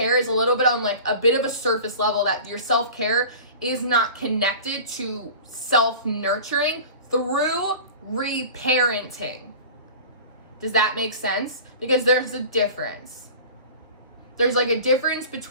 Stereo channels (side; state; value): both; inverted; correlation -0.38